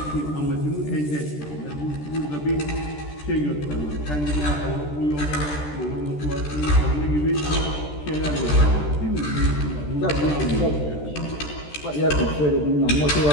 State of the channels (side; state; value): right; late; 13 ms